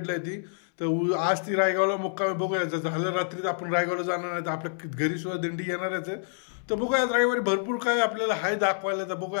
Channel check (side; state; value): right; silent; 60 dB below the other